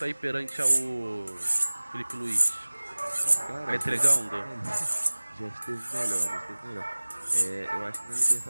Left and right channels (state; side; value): inverted; both; correlation -1.00